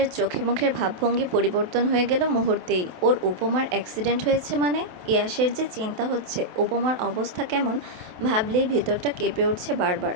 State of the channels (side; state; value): left; late; 27 ms